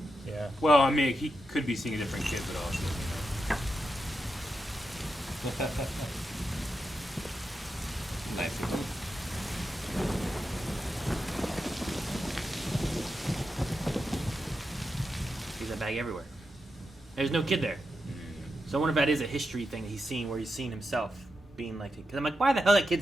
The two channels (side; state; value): both; normal; correlation 0.87